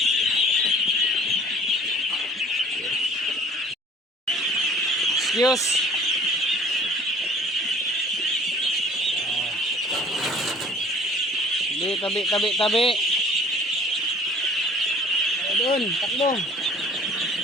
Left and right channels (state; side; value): normal; both; correlation 0.50